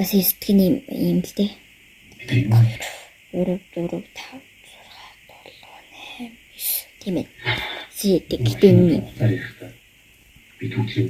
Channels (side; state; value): both; identical; correlation 1.00